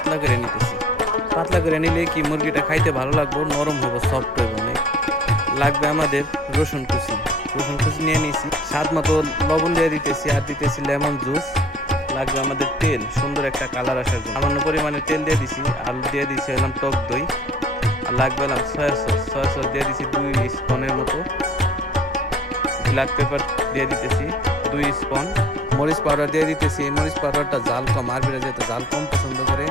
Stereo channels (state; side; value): normal; both; correlation 0.52